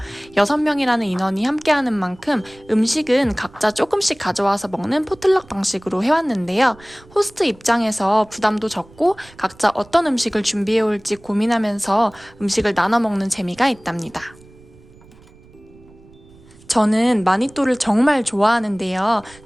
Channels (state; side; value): noise; right; rumble, 25 dB below the sound